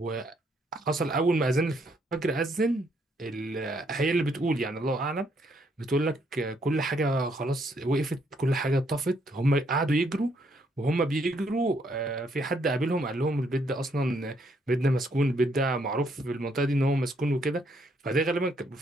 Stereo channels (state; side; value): normal; both; correlation 0.71